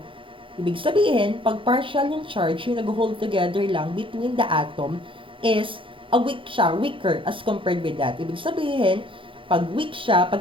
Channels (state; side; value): late; left; 0.25 ms